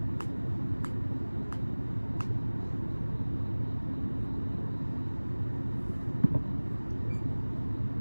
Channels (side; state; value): both; inverted; correlation -1.00